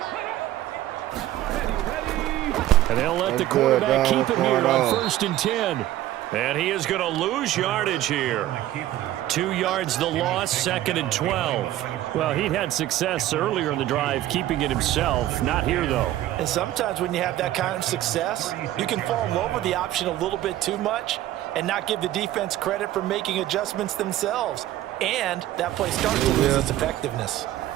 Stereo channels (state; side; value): quieter; left; 14.0 dB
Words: Ready. And they'll let the That's quarterback good, keep it What's here going on on? 1st and 10. And he is going to lose yardage here. 2 yards the loss, 2nd and 12. Well, he'd had success earlier in the drive keeping it himself. Not here, though. And sometimes when you have that kind of success, you can fall in love with the option a little bit too much and not give the defense credit for making adjustments themselves. And that play starts to lose its effectiveness.